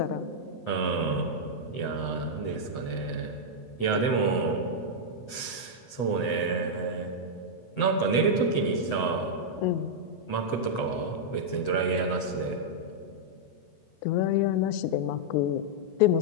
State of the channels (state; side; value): late; right; 8.0 ms